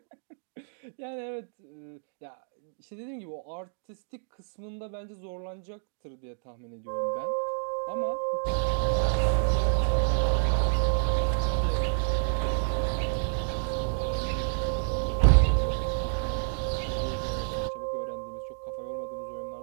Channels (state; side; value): silent; left; digital silence